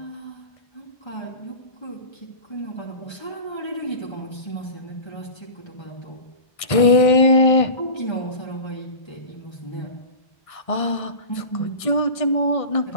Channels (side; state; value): right; late; 1.6 ms